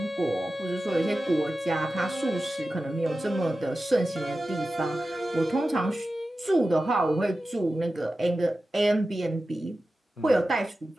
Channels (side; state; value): both; normal; correlation 0.94